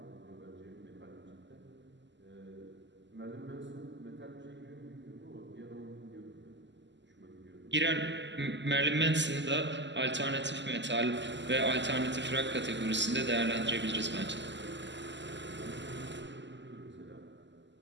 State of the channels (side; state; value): left; late; 0.53 ms